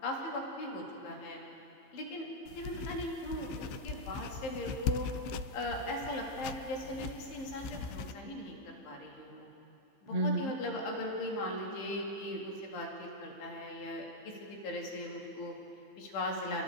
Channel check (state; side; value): late; right; 15 ms